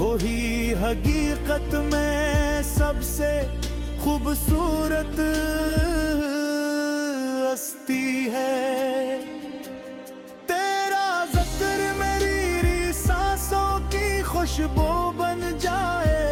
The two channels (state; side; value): identical; both; correlation 1.00